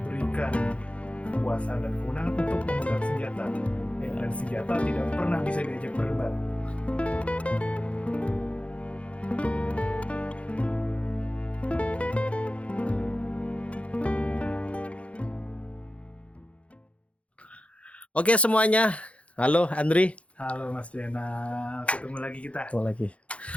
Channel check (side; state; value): right; late; 0.063 ms